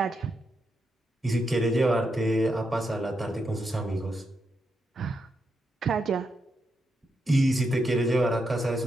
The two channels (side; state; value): both; normal; correlation 0.83